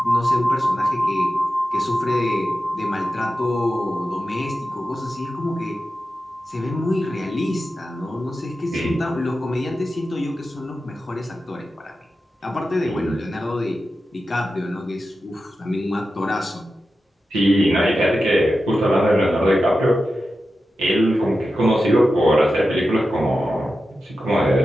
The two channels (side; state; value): both; normal; correlation 0.92